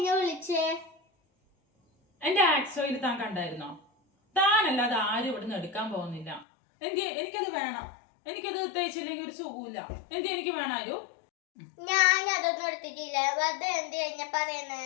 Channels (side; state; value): right; drops out; at 6.5 s